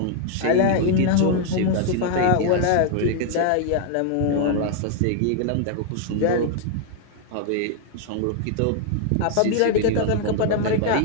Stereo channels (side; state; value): both; different; correlation 0.00